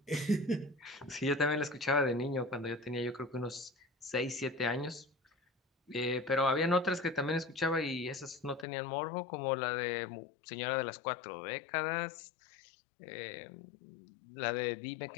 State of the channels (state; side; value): drops out; right; at 8.7 s